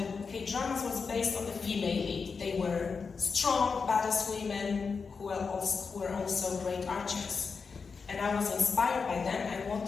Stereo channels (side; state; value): right; quieter; 5.2 dB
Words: K-dramas was based on the female lead. They were strong, badass women who were also great archers. And I was inspired by them. I